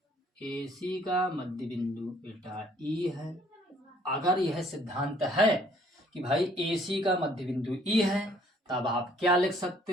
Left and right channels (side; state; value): both; normal; correlation 0.61